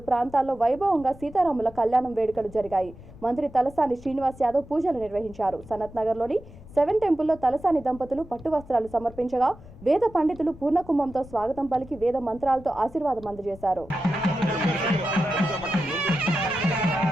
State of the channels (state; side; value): noise; left; rumble, 19 dB below the sound